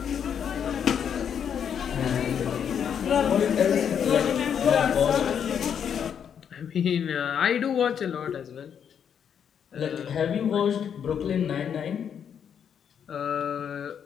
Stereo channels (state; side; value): quieter; right; 8.1 dB